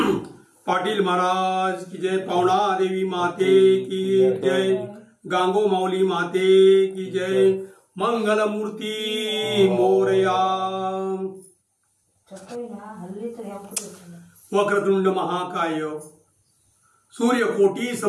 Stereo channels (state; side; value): identical; both; correlation 1.00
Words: पाटील महाराज की जय, पावना देवी माते की जय, गांगो माऊली माते की जय, मंगल मूर्ती मोरया। वक्रतुंड महाकाय सूर्यकोटी